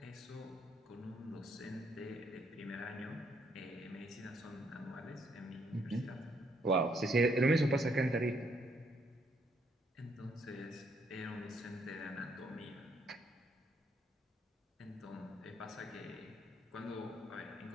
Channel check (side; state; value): both; normal; correlation 0.71